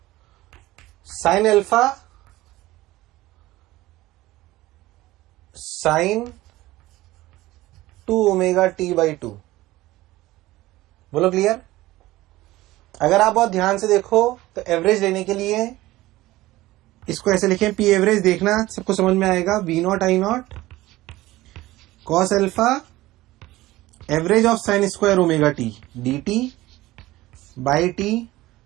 sine alpha sign 2 omega T by 2। बोलो क्लियर? अगर आप बहुत ध्यान से देखो तो एवरेज लेने के लिए इसको ऐसे लिखें, पी एवरेज देखना सबको समझ में आएगा। V not I not cos alpha average of sine square omega T D T by T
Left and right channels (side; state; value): left; quieter; 17.6 dB